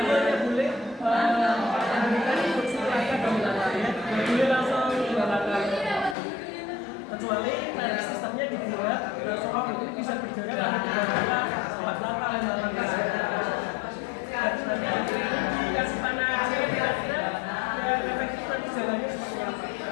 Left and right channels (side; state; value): right; drops out; at 6.2 s